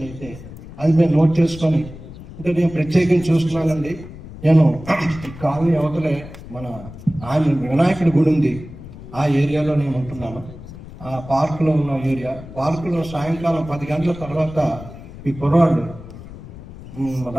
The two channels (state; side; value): noise; left; rumble, 15 dB below the sound